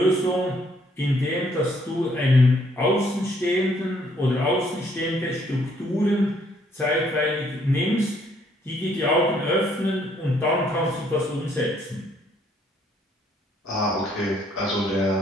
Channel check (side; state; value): both; normal; correlation 0.67